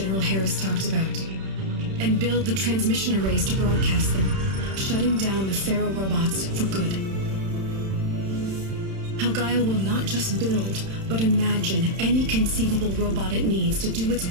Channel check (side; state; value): left; late; 31 ms